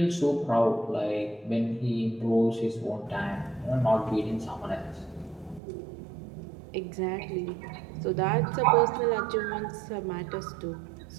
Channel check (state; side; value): drops out; left; at 5.6 s